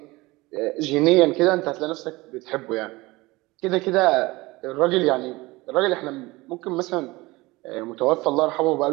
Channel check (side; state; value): left; quieter; 21.5 dB